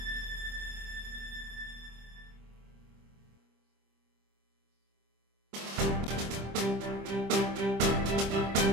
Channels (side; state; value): left; late; 25 ms